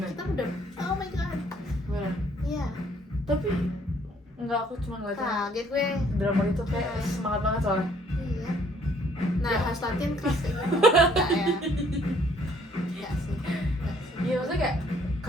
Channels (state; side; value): normal; both; correlation 0.62